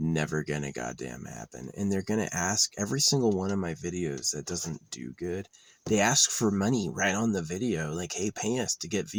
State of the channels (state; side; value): identical; both; correlation 1.00